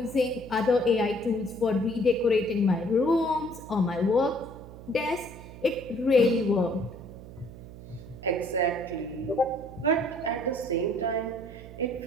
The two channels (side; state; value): right; noise; hum, 15 dB below the sound